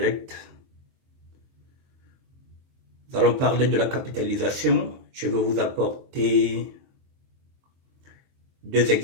Nous allons parler de la capitalisation. Je vais vous apporter 2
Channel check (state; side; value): late; left; 23 ms